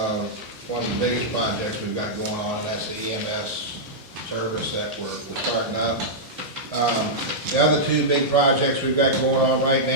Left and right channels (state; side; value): normal; both; correlation -0.10